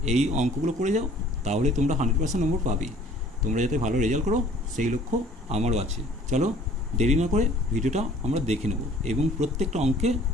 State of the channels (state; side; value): normal; both; correlation 0.53